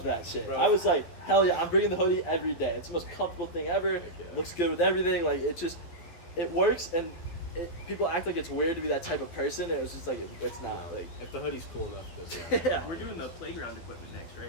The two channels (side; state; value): right; late; 12 ms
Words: that shit. Bro. I was like, hell yeah, I'm bringing the hoodie every day. It's the most comfortable thing ever. Heck yeah. Looks good with everything. Like it works, and people act like it's weird to be that type of person. It was just like it's not. No, Like if the hoodie's cool enough, it doesn't matter. yeah. We're doing the playground equipment next, right?